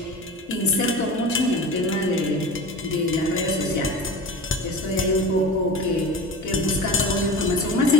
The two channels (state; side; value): normal; both; correlation 0.33